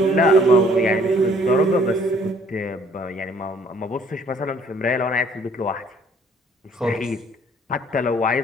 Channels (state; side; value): normal; both; correlation 0.59